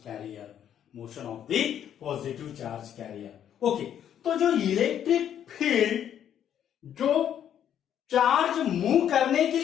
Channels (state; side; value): quieter; right; 9.8 dB